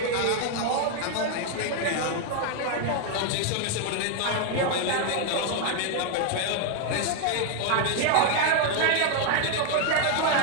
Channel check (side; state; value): both; different; correlation 0.00